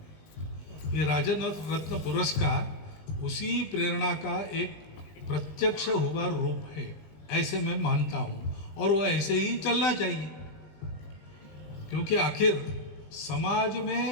में। ये राजन रत्न पुरस्कार उसी प्रेरणा का एक प्रत्यक्ष हुआ रूप है, ऐसे मैं मानता हूँ, और वो ऐसे ही चलना चाहिए, क्योंकि आखिर समाज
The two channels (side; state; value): right; late; 20 ms